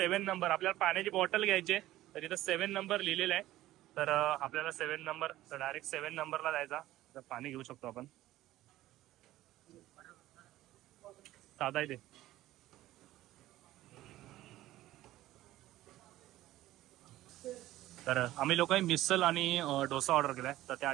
नंबर. आपल्याला पाण्याची बॉटल घ्यायची तर इथं 7 नंबर लिहिलेला आहे. तर आपल्याला 7 नंबर, तर डायरेक्ट 7 नंबरला जायचा. तर पाणी घेऊ शकतो आपण. साधा आहे ते. तर आम्ही लोकांनी मिसल आणि डोसा ऑर्डर केलाय. तर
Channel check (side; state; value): left; quieter; 15.3 dB